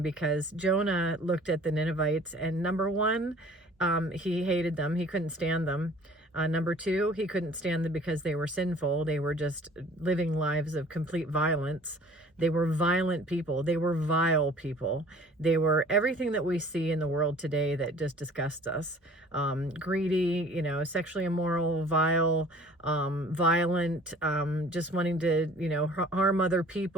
because Jonah looked at the Ninevites, and number one, he hated them. He couldn't stand them. Number two, he couldn't stand them because they were sinful. They were just living lives of complete violence. They were violent people. They were vile people. They were everything that we see in the world today that just disgusts us. Greedy, you know, sexually immoral, vile, violent, just wanting to, you know, harm other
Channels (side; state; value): both; normal; correlation 0.50